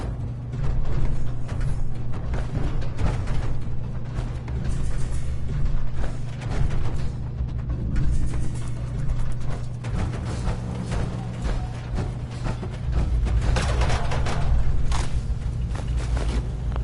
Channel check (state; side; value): identical; both; correlation 1.00